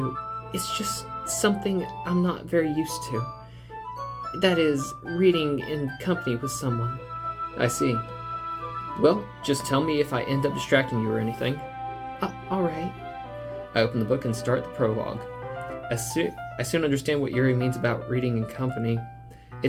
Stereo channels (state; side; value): identical; both; correlation 1.00